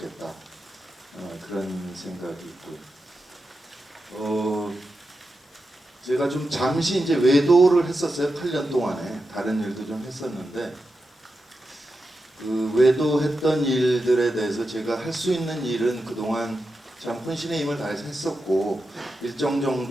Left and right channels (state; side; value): normal; both; correlation 0.89